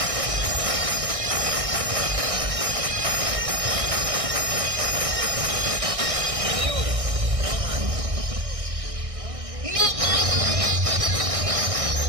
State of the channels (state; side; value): late; left; 1.6 ms